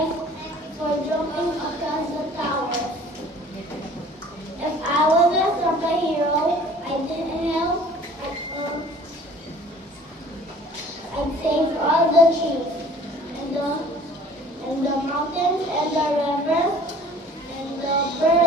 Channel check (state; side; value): normal; both; correlation 0.51